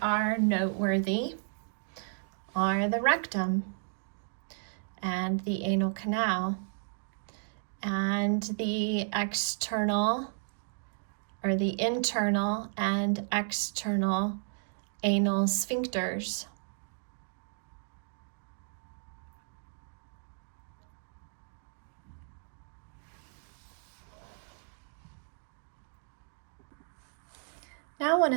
are noteworthy are the rectum and the anal canal and the external or the internal and external anal sphincters. Now I want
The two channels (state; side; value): silent; left; digital silence